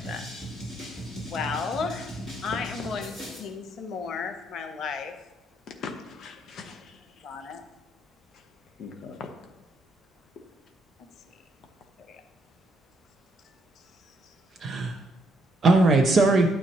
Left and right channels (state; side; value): normal; both; correlation 0.73